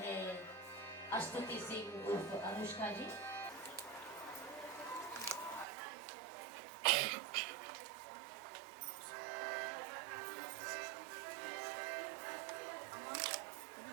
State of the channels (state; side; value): drops out; left; at 5.7 s